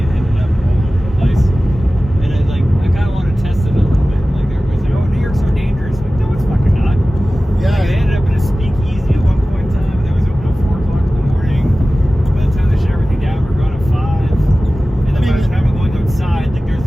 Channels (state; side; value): normal; both; correlation 0.96